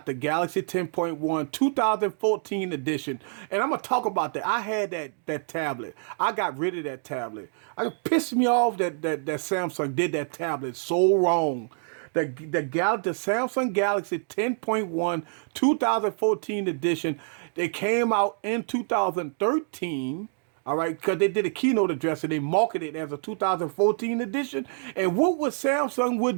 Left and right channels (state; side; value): silent; left; digital silence